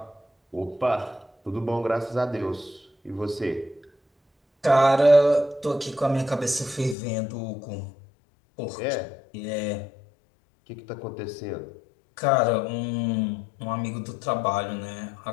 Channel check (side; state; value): right; drops out; at 7.0 s